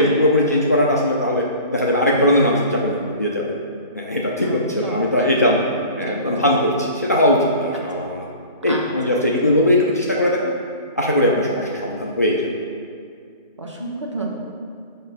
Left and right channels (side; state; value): both; inverted; correlation -0.41